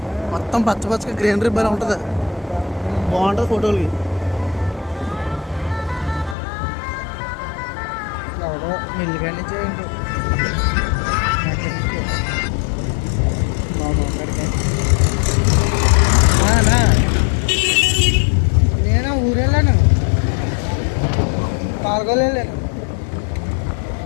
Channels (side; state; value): right; drops out; at 6.4 s